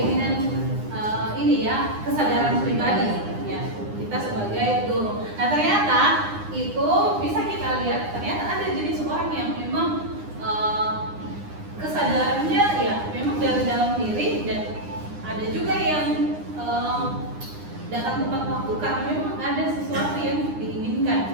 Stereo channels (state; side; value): late; left; 9.8 ms